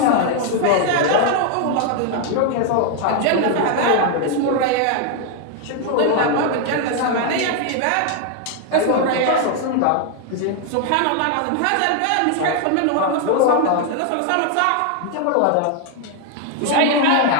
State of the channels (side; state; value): both; different; correlation 0.00